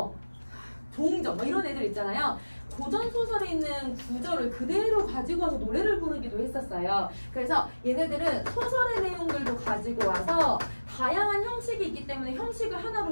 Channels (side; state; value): both; inverted; correlation -1.00